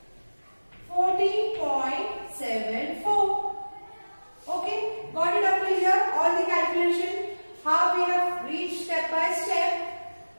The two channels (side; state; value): both; inverted; correlation -1.00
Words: 14.74. Okay, got it up to here? All the calculation, how we have reached step by step